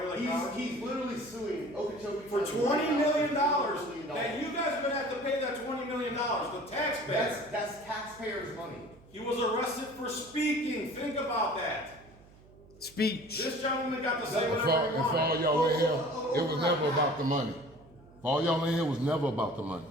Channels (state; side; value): noise; right; hum, 24 dB below the sound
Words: like cowards? He's literally suing Okeechobee For County $20 million, $20 that you guys are gonna have to pay that $20 million, the taxpayer. That's taxpayers' money. He was arrested for speaking, think about that. Speech. This gentleman got to say And whatever he for all wanted. y'all in here, it was never about the money. For all y'all in here, it was never about the money.